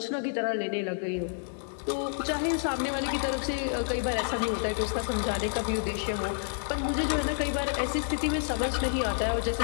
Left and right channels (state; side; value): silent; right; digital silence